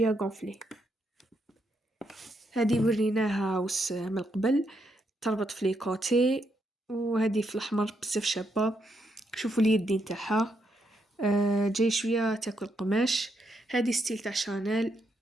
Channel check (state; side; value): normal; both; correlation 0.78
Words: غونفلي. هذه وريناها وس من قبل تربط في لي كوتي. وهذه في الاحمر بزاف شابه, شوفوا اليدين تاعها جاي شوية تاكل قماش. هادي ستيل تاع شانيل